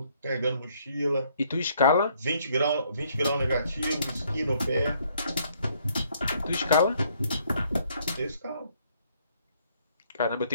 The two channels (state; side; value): inverted; both; correlation -0.67